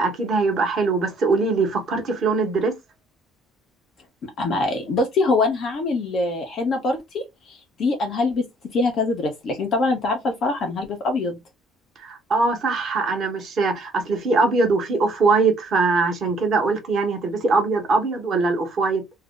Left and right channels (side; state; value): both; normal; correlation 0.61